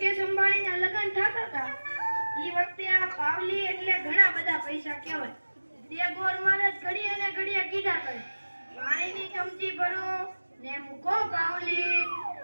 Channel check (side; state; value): both; inverted; correlation -1.00